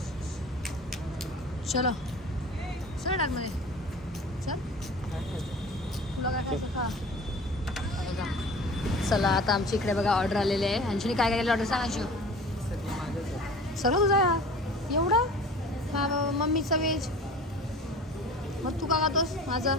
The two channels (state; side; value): normal; both; correlation 0.41